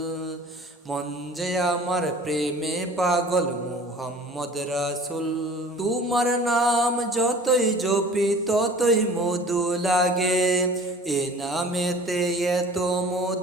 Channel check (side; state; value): both; normal; correlation 0.45